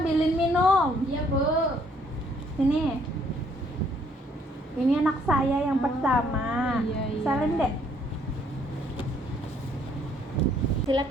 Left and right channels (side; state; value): both; normal; correlation 0.65